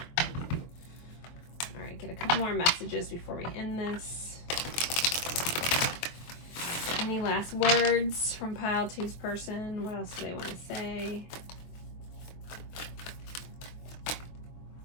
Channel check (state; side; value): late; right; 23 ms